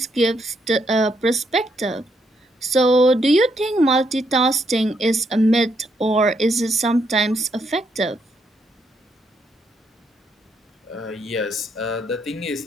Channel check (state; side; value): normal; both; correlation 0.76